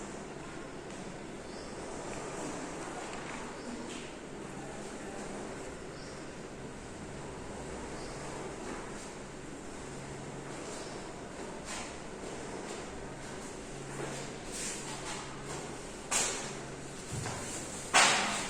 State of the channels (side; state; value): both; identical; correlation 1.00